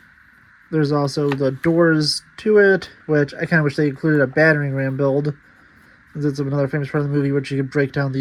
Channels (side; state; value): both; identical; correlation 1.00